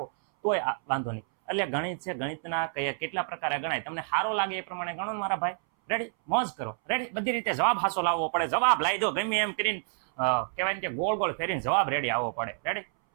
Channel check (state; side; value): silent; left; 59 dB below the other